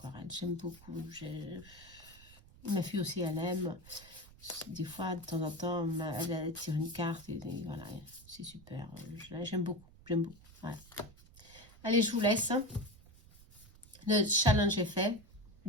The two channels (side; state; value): right; noise; rumble, 22 dB below the sound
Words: J'aime beaucoup. Ma fille aussi, elle aime. Des fois, de temps en temps, elle tire une carte et voilà, c'est super. J'aime beaucoup, j'aime beaucoup. Voilà. Allez, je vous laisse. Le challenge est fait